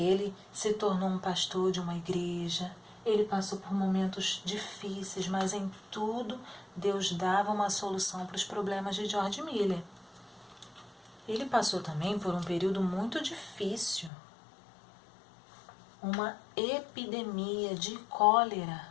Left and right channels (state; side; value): drops out; right; at 14.1 s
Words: se tornou um pastor de uma igreja. Ele passou por momentos difíceis, mas em tudo Deus dava uma solução para os problemas de George Miller. Ele passou também por um período muito difícil. Uma epidemia de